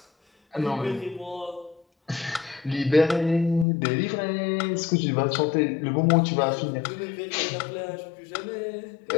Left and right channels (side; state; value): right; drops out; at 3.7 s